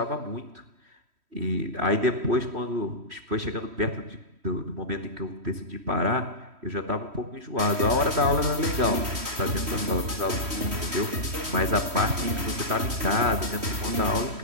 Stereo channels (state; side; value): late; left; 3.1 ms